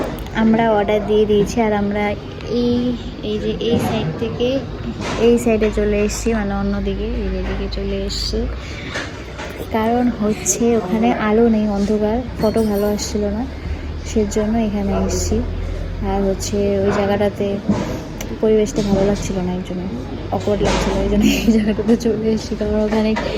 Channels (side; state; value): both; identical; correlation 1.00